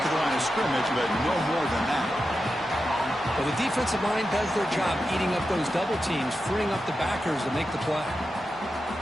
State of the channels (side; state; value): both; normal; correlation 0.90